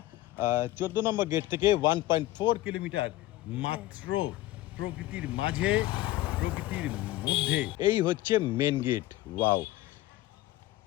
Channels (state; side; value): quieter; right; 16.4 dB